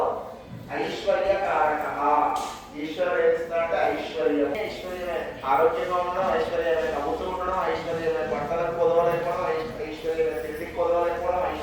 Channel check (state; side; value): identical; both; correlation 1.00